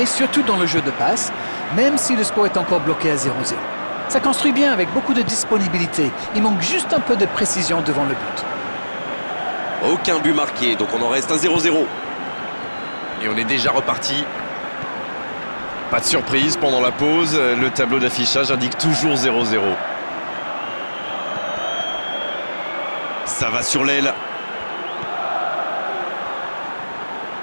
surtout dans le jeu de passe, même si le score est encore bloqué à 0-0. Ça construit bien avec beaucoup de disponibilité. Il manque juste un peu de précision devant le but. Aucun but marqué, donc on en reste à 0-0. Et on est déjà reparti. Pas de surprise pendant la pause. Le tableau d'affichage indique toujours 0-0. Ça va sur l'aile.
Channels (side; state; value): both; inverted; correlation -1.00